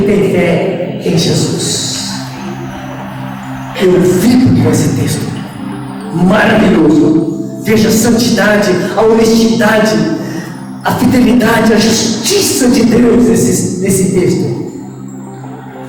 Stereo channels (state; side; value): identical; both; correlation 1.00